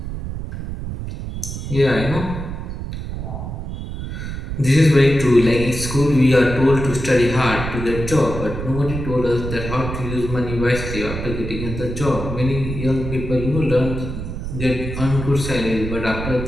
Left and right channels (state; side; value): noise; right; rumble, 6 dB below the sound